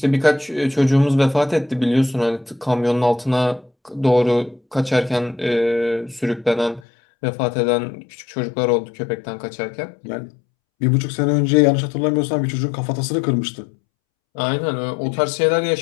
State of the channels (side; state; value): right; drops out; at 6.8 s